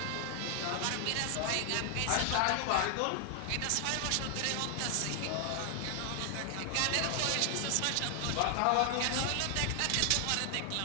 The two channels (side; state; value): both; different; correlation 0.00